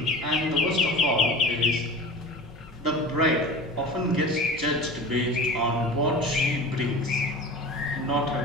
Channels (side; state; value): both; normal; correlation 0.34